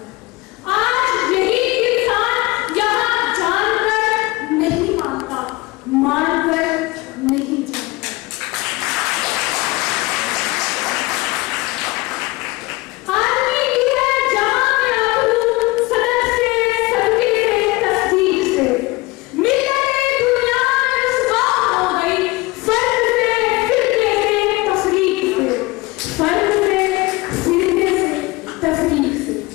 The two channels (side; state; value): right; quieter; 22.2 dB